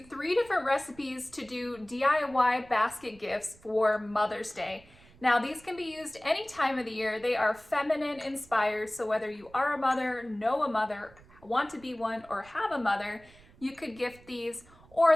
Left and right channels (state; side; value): noise; right; rumble, 25 dB below the sound